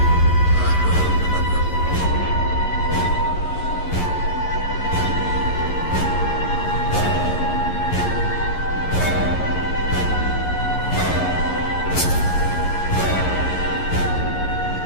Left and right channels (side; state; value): right; late; 11 ms